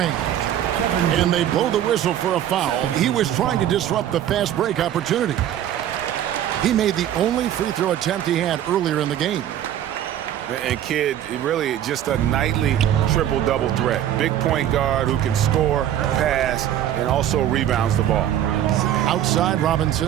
And they blow the whistle for a foul. He was trying to disrupt the fast break opportunity. He made the only free throw attempt he had earlier in the game. And Kidd, really just a nightly triple-double threat. Big point guard who can score, pass, and also rebounds the ball. Outside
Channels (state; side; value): quieter; left; 11.2 dB